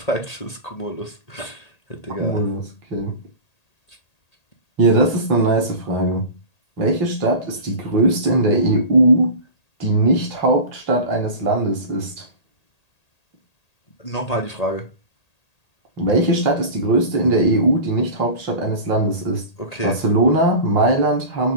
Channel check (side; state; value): right; late; 1.8 ms